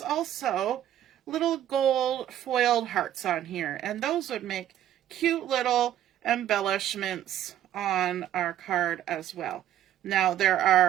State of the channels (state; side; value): quieter; left; 11.7 dB